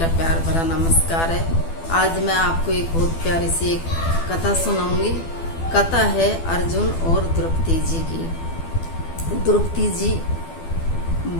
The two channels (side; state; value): right; late; 12 ms